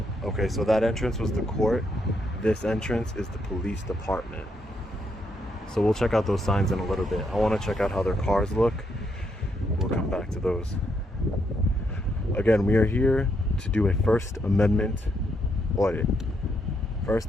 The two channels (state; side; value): normal; both; correlation 0.77